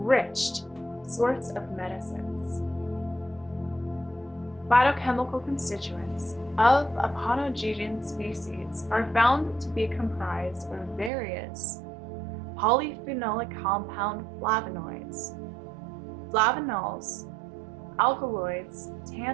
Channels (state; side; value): drops out; left; at 11.1 s